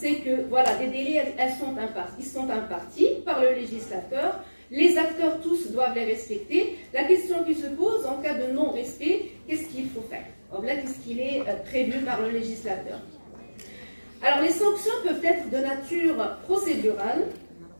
que voilà, des délais, ils sont impartis par le législateur, les acteurs tous doivent les respecter. La question qui se pose en cas de non-respect, qu'est-ce qu'il faut faire? Or là, qu'est-ce qu'il est prévu par le législateur? Alors les sanctions peuvent être de nature procédurale,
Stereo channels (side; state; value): both; inverted; correlation -1.00